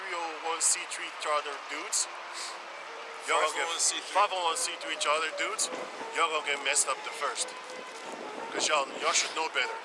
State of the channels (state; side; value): identical; both; correlation 1.00